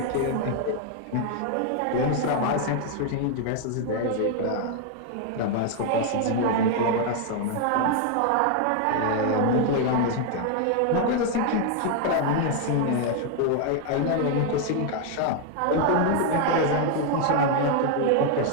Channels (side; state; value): both; different; correlation 0.00